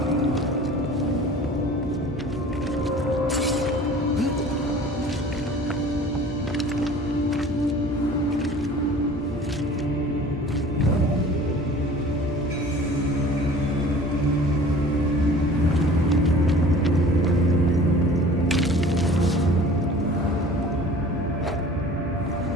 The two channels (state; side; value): normal; both; correlation 0.45